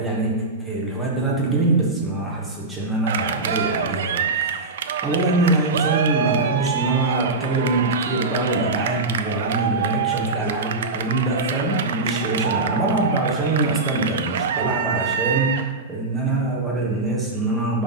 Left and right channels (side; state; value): left; quieter; 3.3 dB